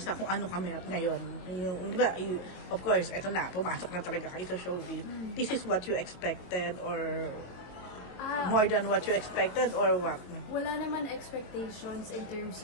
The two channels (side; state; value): right; late; 22 ms